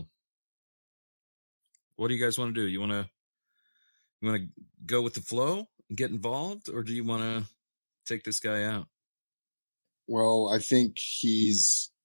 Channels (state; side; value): inverted; both; correlation -1.00